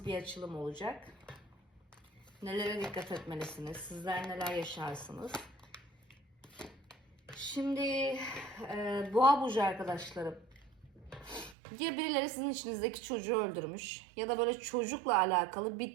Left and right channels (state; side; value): drops out; left; at 11.6 s